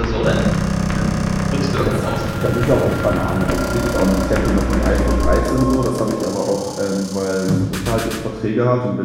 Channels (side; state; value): both; identical; correlation 1.00